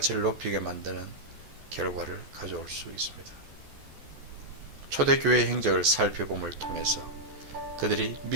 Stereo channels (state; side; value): late; left; 14 ms